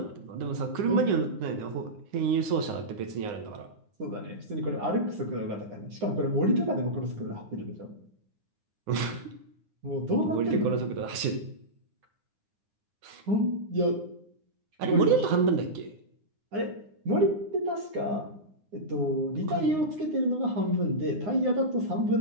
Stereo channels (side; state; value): left; late; 9.7 ms